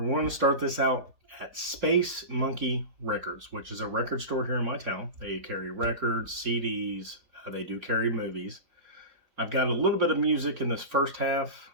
going to start this out at Space Monkey Records, which is a record store here in my town. They carry records, CDs, they do carry movies. I've got a little bit of music in this first half.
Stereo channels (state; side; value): late; left; 4.4 ms